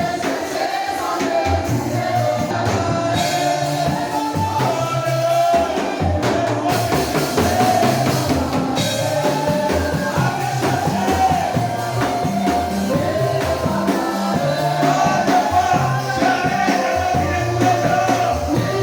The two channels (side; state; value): both; identical; correlation 1.00